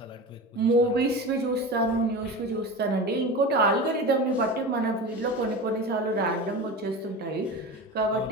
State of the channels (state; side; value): normal; both; correlation 0.29